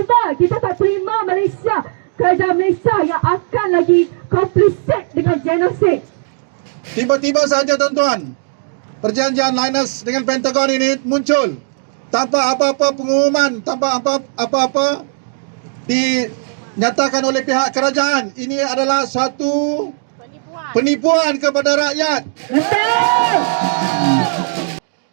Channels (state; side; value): silent; left; digital silence